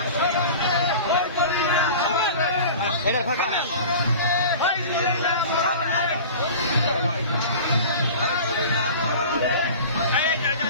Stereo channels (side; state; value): both; inverted; correlation -0.37